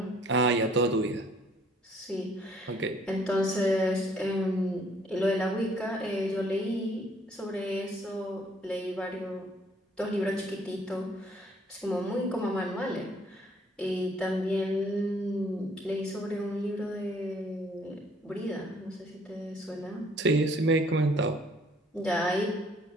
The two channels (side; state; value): both; normal; correlation 0.61